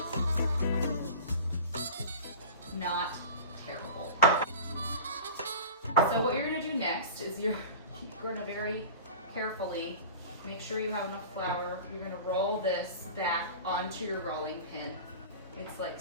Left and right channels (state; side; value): inverted; both; correlation -0.36